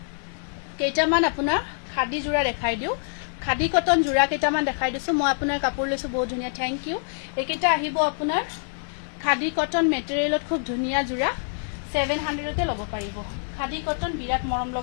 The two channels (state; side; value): silent; right; digital silence